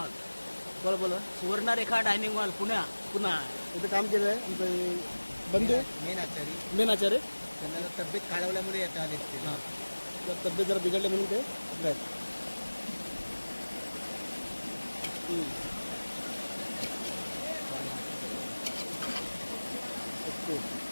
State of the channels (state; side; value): inverted; both; correlation -1.00